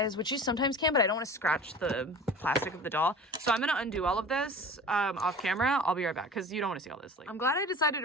which you sometimes can, but I don't want to scratch the plastic of the doll. So I'm going to undo all of this off camera. I'll be right back because you don't want to see all this. Like, I'm glad I decided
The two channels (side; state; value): both; normal; correlation 0.39